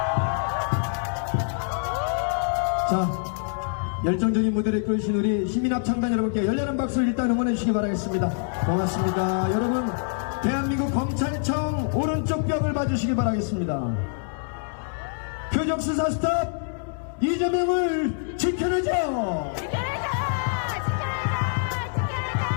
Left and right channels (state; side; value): silent; right; digital silence